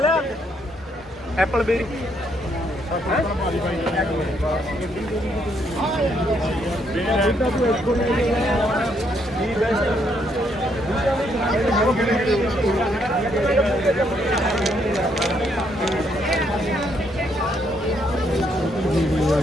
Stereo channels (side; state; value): both; normal; correlation 0.73